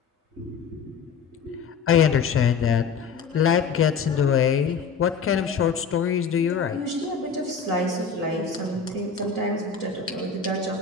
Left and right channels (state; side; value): quieter; right; 5.9 dB